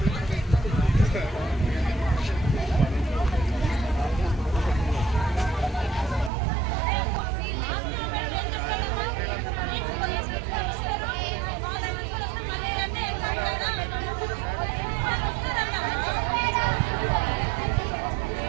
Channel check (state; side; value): drops out; left; at 6.3 s